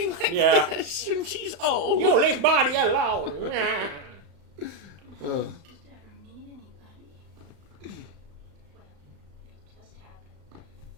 like this, and she's old. You leave body alone. Just ever meet anybody. Well, it just happened.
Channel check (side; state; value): left; late; 35 ms